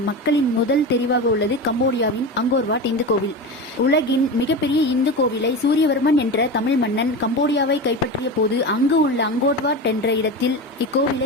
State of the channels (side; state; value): both; normal; correlation 0.24